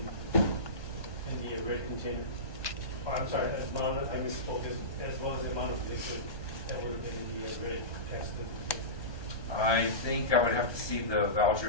been in the red container? Or, I'm sorry, I misspoke, as well as the amount of liquid that would have been in the red gasoline container? I think I would have to see the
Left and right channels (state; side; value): late; right; 1.3 ms